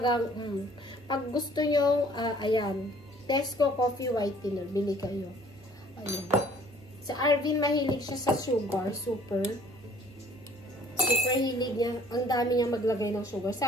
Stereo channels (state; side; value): normal; both; correlation 0.55